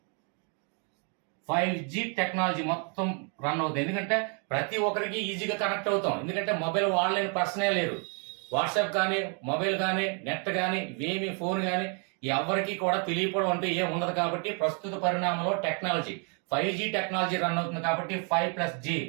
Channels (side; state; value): left; quieter; 38.2 dB